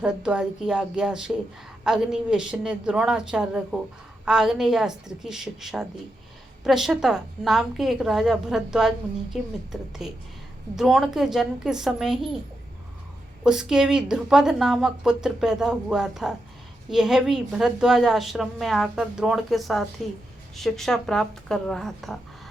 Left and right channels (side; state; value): both; normal; correlation 0.85